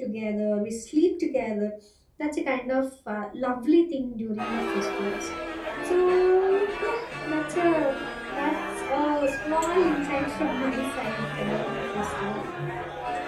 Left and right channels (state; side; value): identical; both; correlation 1.00